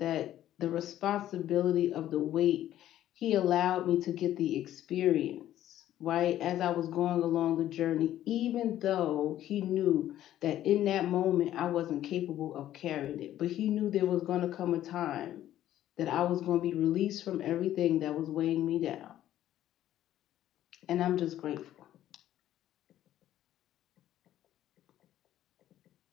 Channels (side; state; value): right; quieter; 12.6 dB